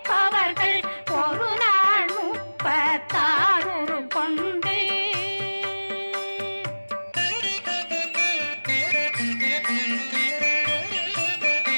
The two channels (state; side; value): inverted; both; correlation -1.00